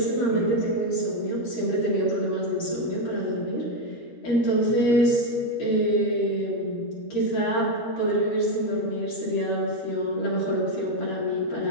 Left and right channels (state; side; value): late; right; 12 ms